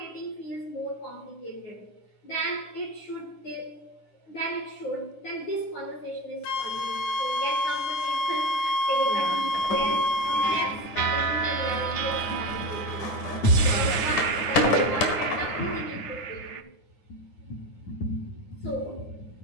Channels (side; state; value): right; late; 9.7 ms